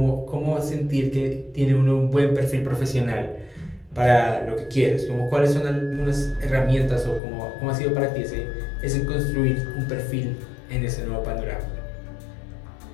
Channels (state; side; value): drops out; right; at 7.2 s